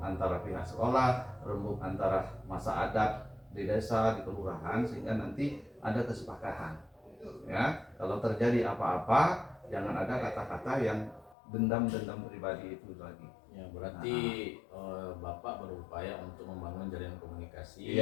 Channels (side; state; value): right; drops out; at 11.4 s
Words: antara pihak sekolah, rembuk antara masa adat di desa, di kelurahan, sehingga nanti ada kesepakatan. Ya, kalau terjadi apa-apa, jangan ada kata-kata yang dendam-dendam pribadi itu lagi. Ya, berarti Bapak berupaya untuk membangun jaringan komunikasi